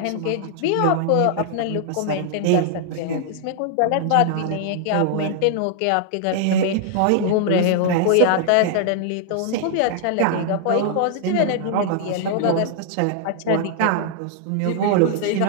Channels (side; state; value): both; different; correlation -0.01